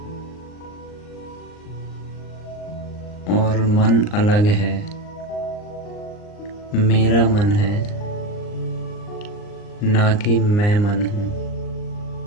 और मन अलग है, मेरा मन है, ना कि मैं मन हूँ।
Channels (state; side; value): late; right; 39 ms